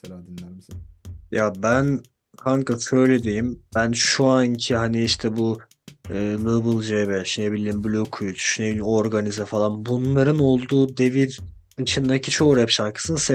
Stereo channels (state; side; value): identical; both; correlation 1.00